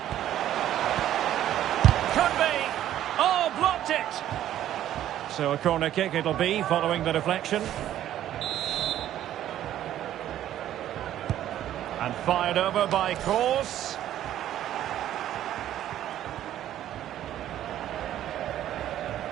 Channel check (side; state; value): left; quieter; 12.1 dB